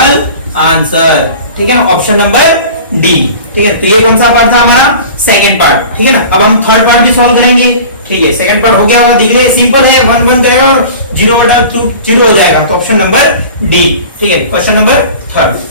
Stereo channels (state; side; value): inverted; both; correlation -0.40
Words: आंसर, ठीक है ना, ऑप्शन नंबर डी, ठीक है। तो ये कौन सा पार्ट था हमारा सेकंड पार्ट, ठीक है ना। अब हम थर्ड पार्ट भी सॉल्व करेंगे, ठीक है। सेकंड पार्ट हो गया होगा, दिख रहे सिंपल है, 1 1 जाएगा और 0/2 हो जाएगा, तो ऑप्शन नंबर डी, ठीक है, क्वेश्चन नंबर थर्ड।